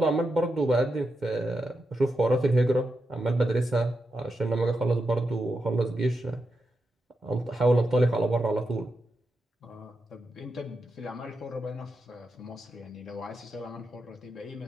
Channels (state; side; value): normal; both; correlation 0.87